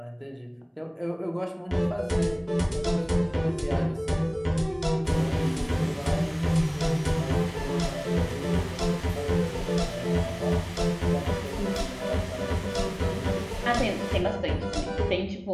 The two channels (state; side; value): identical; both; correlation 1.00